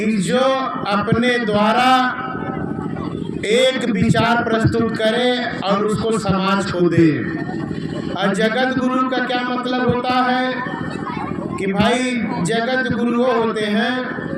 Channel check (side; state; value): both; identical; correlation 1.00